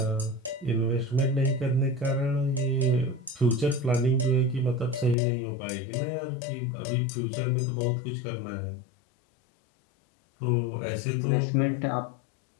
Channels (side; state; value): right; drops out; at 5.2 s